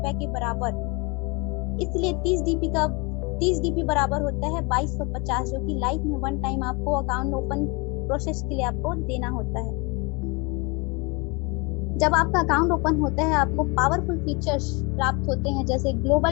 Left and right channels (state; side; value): quieter; right; 28.8 dB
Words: के बराबर। इसलिए 30 डीपी बराबर होता है 2250, जो कि लाइफ में वन टाइम आपको अकाउंट ओपन प्रोसेस के लिए आपको देना होता है। जब आपका अकाउंट ओपन होता है आपको पावरफुल फीचर्स प्राप्त होते हैं, जैसे